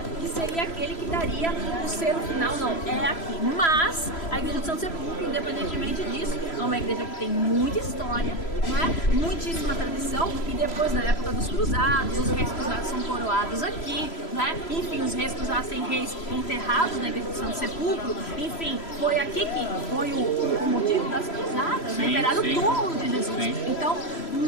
que seria aquele que daria o selo final, não, é aqui. Mas a Igreja do Santo Sepulcro, independentemente disso, é uma igreja que tem muita história, não é? Muitíssima tradição, e depois, na época dos cruzados, os reis cruzados são coroados aqui, né? Enfim, os reis cruzados têm reis enterrados na Igreja do Santo Sepulcro, enfim, foi aqui que foi o motivo das cruzadas, né? Enterrar o túmulo de Jesus. Sim. Então,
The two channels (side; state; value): right; late; 3.0 ms